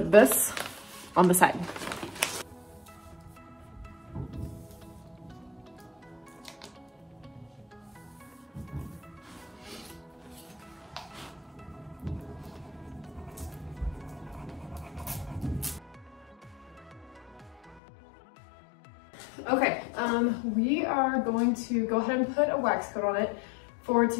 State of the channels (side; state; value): right; drops out; at 17.8 s